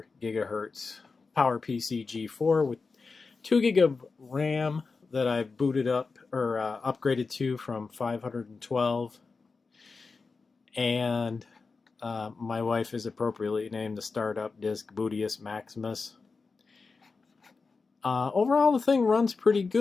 gigahertz PowerPC G4 with 2 gig of RAM that I booted up or upgraded to from 512, and my wife has appropriately named the startup disk Bootius Maximus. Overall, the thing runs pretty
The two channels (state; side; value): quieter; right; 4.4 dB